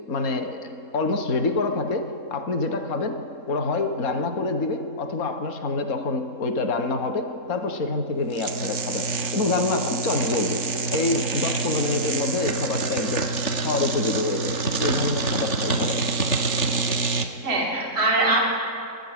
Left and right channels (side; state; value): right; late; 3.7 ms